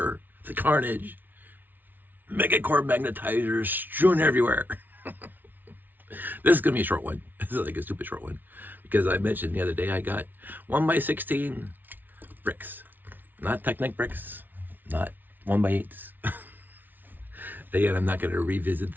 the carnage. Mega Core Magnetizers strewn everywhere. This is going to be a short one. This is like a stupid short one. Because I mentioned the other day I got 1x16 bricks. Not Technic bricks. Not 1x8s. Again, I'm not going to revisit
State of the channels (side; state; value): left; late; 0.087 ms